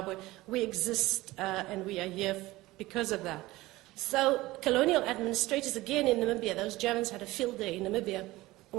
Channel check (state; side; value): quieter; left; 18.8 dB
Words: we exist and we are here because of that. So colonial administrators, again in Namibia, those Germans had a field day in Namibia,